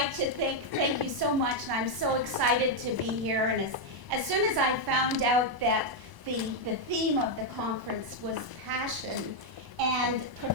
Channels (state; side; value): late; left; 1.0 ms